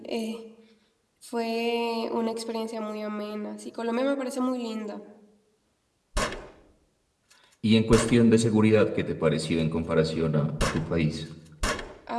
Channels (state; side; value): identical; both; correlation 1.00